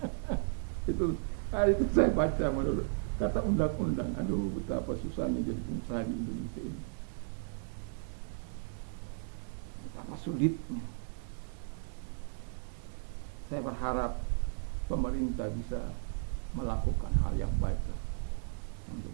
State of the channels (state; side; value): silent; left; 54 dB below the other